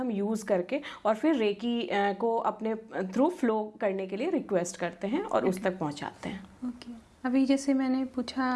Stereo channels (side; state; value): both; identical; correlation 1.00